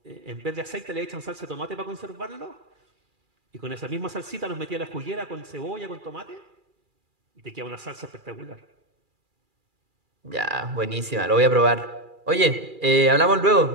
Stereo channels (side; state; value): left; late; 2.4 ms